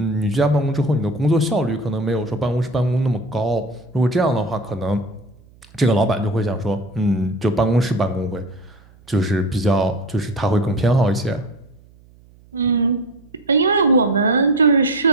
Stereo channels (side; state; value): right; noise; hum, 27 dB below the sound